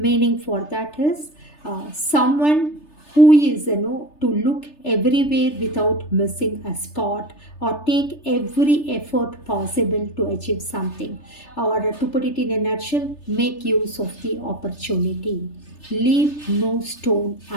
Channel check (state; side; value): late; right; 3.3 ms